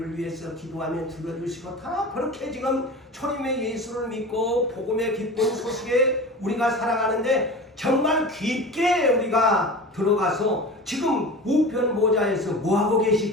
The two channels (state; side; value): normal; both; correlation 0.33